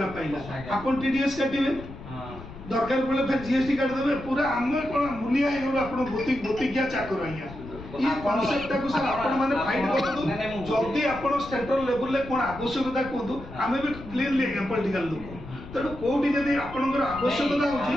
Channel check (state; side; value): noise; left; rumble, 14 dB below the sound